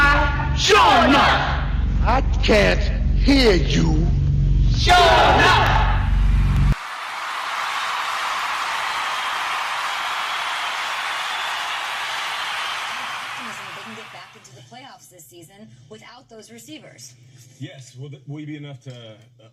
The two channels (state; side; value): identical; both; correlation 1.00